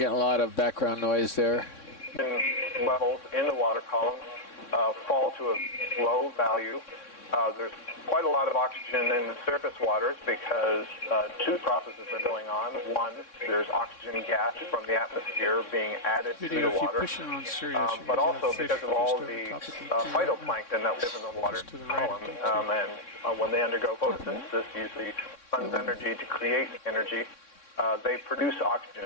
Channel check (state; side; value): late; right; 3.6 ms